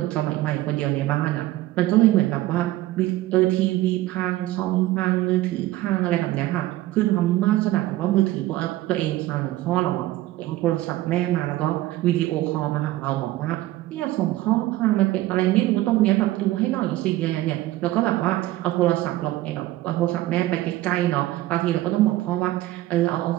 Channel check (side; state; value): left; quieter; 16.3 dB